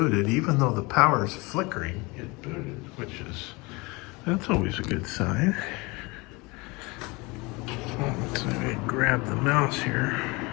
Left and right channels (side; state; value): right; quieter; 25.5 dB